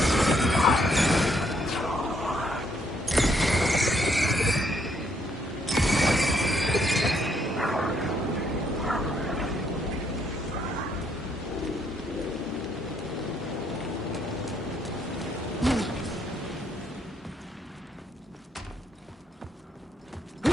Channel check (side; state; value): both; normal; correlation 0.72